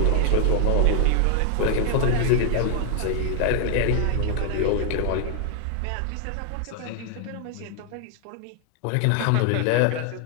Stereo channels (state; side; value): different; both; correlation 0.00